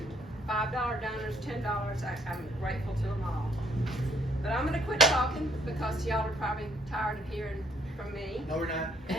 $5 donors, $10, I'm grateful to them all. But I'm going to quit talking because y'all are probably tired of hearing from me. No, we're not.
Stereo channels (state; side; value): normal; both; correlation 0.67